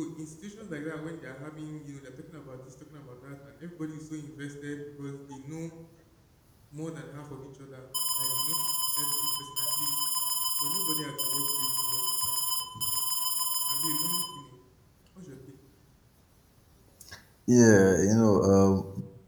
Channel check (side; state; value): both; identical; correlation 1.00